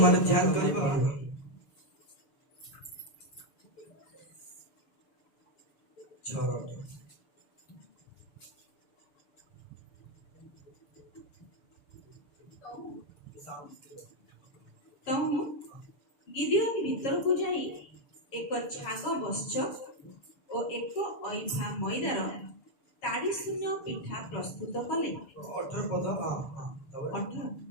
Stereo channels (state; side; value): late; right; 6.9 ms